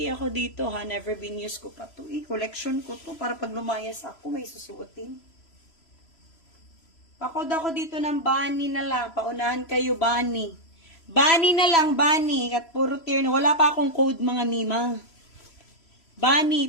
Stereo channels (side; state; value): right; late; 3.0 ms